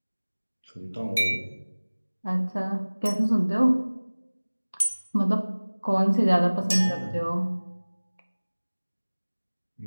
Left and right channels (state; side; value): inverted; both; correlation -1.00